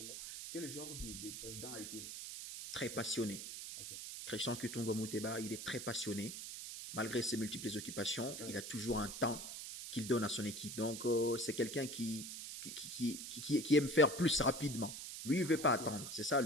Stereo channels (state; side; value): noise; right; hiss, 8 dB below the sound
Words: Quel genre de président a-t-il? Très passionné. Okay. Christian Kitungo Muteba, il est très passionné. Malgré ses multiples occupations, il a toujours un temps qu'il donne à son équipe. Donc, c'est quelqu'un qui aime faire plus rapidement. Lui, il ne veut pas attendre. C'est ça,